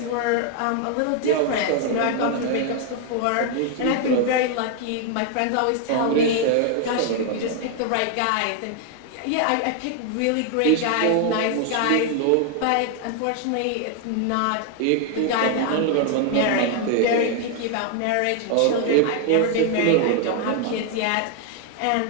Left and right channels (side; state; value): both; different; correlation 0.00